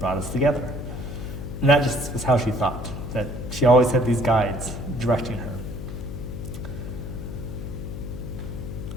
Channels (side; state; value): left; noise; hum, 7 dB below the sound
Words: us together. And that just was how she thought, that she always had these guides directing her.